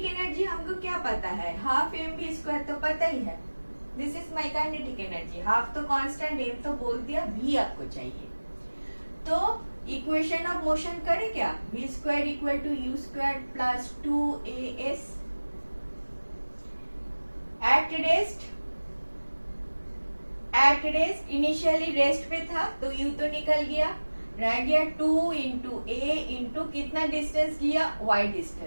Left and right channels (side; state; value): both; inverted; correlation -1.00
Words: एनर्जी हमको क्या पता है? हाफ mv² तो पता ही है. This is my kinetic energy. Half तो कांस्टेंट, m तो बोल दिया, v आपको चाहिए. तो इक्वेशन ऑफ मोशन करें क्या? v² equal to u² plus 2as. At rest initially rest पे था तो u तो निकल गया, रह गया 2 इंटू ए इंटू कितना डिस्टेंस किया? y